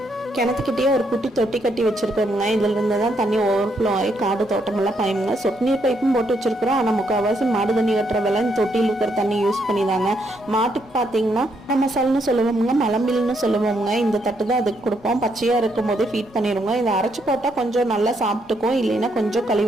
கிணத்துக்கிட்டே ஒரு குட்டி தொட்டி கட்டி வச்சிருக்கோங்க. இதுல இருந்து தான் தண்ணி ஓவர்ஃப்ளோ ஆகி காடு தோட்டமெல்லாம் பயமுங்க. சொட்டு நீர் பைப்பும் போட்டு வச்சிருக்கிறோம். ஆனால் முக்கால்வாசி மாடு தண்ணி கட்டுற வேலை இந்த தொட்டியில் இருக்கிற தண்ணி யூஸ் பண்ணிதாங்க. மாட்டுக்கு பார்த்தீங்கன்னா நம்ம சல்னு சொல்லுவோமுங்க, மலம்பில்னு சொல்லுவோமுங்க. இந்த தட்டு தான் அதுக்கு கொடுப்போம். பச்சையாக இருக்கும் போதே ஃபீட் பண்ணிடுவோங்க. இதை அரைச்சி போட்டால் கொஞ்சம் நல்லா சாப்பிட்டுக்கும், இல்லைன்னா கொஞ்சம்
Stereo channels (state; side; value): normal; both; correlation 0.75